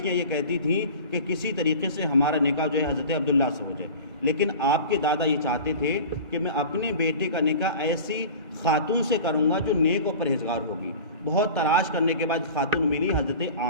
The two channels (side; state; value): both; inverted; correlation -0.37